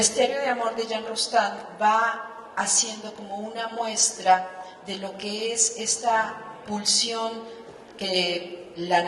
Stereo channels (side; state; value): both; identical; correlation 1.00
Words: de Amor de Jean Rostand va haciendo como una muestra de lo que es esta pulsión que la